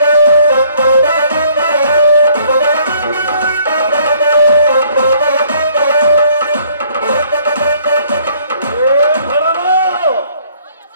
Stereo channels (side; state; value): both; inverted; correlation -0.61